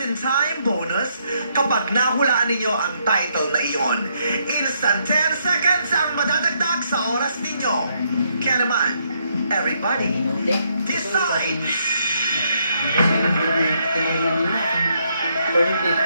time bonus kapag nahulaan ninyo ang title na iyon. Instant 10 seconds ang madadagdag sa oras ninyo. Kaya naman, everybody, decide!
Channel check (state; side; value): inverted; both; correlation -0.74